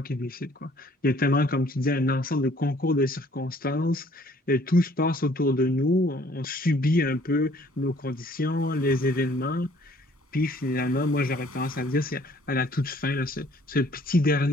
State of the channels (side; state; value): both; normal; correlation 0.59